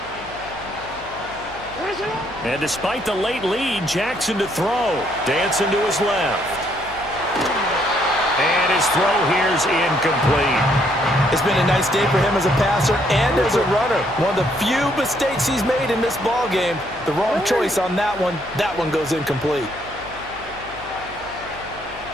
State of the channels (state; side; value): noise; left; hum, 20 dB below the sound